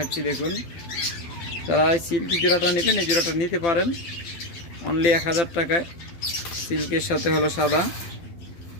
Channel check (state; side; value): late; right; 12 ms